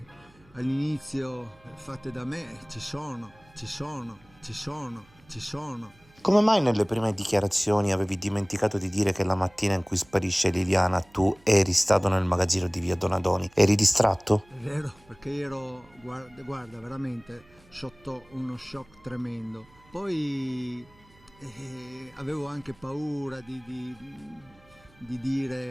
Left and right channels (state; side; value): noise; right; hum, 28 dB below the sound